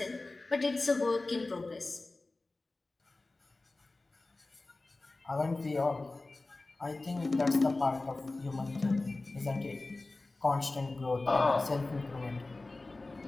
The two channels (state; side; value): quieter; right; 3.2 dB